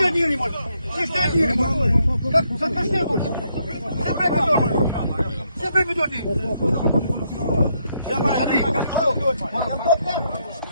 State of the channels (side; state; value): both; inverted; correlation -0.76